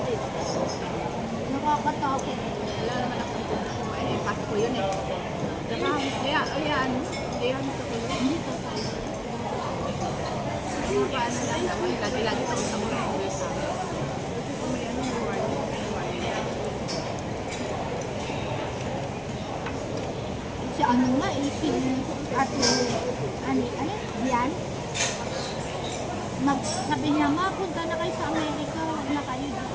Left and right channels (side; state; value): both; identical; correlation 1.00